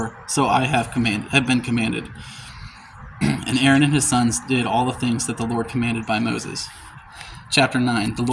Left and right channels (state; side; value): identical; both; correlation 1.00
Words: so I have been commanded. And Aaron and his sons did all the things that the Lord commanded by Moses. Chapter 9. The